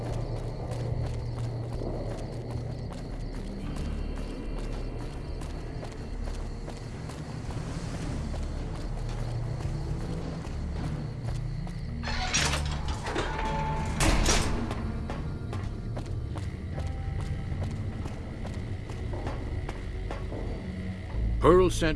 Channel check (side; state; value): both; identical; correlation 1.00